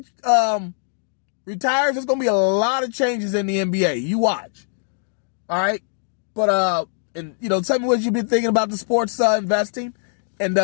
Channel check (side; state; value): right; silent; digital silence